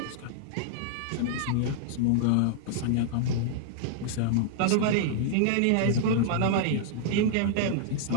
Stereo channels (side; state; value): both; different; correlation -0.01